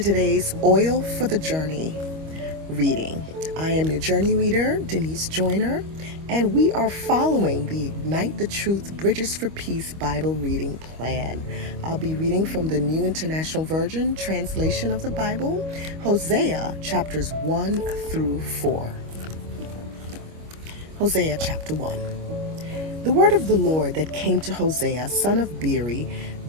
Oil for the Journey reading. I am your journey reader, Denise Joyner, and we are following the Ignite the Truth Bridges for Peace Bible reading plan. I'll be reading from the New International Version translation of the Bible, Hosea chapters 1 through 4. Hosea chapter 1. The word of the Lord that came to Hosea, son of Beeri,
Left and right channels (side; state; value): left; late; 25 ms